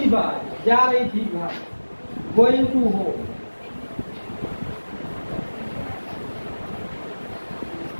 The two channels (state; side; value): inverted; both; correlation -1.00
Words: बाज। जा रही थी घर, गोइंग टू हो।